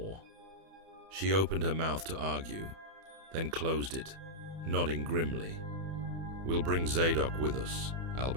She opened her mouth to argue, then closed it, nodding grimly. "We'll bring Zadok with us,"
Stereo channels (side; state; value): left; late; 31 ms